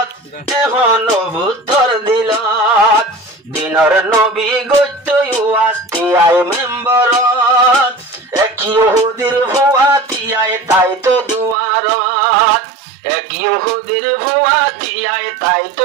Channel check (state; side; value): drops out; left; at 11.6 s